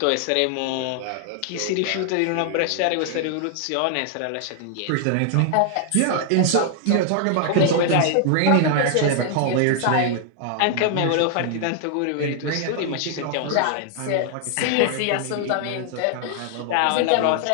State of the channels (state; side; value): different; both; correlation 0.00